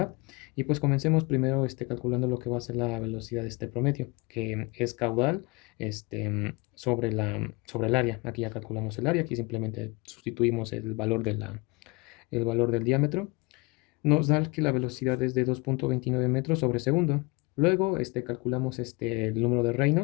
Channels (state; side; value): quieter; right; 26.3 dB